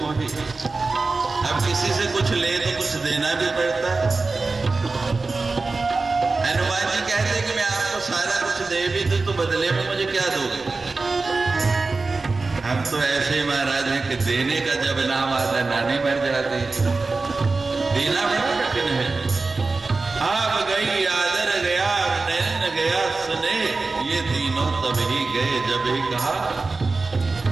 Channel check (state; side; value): quieter; left; 3.7 dB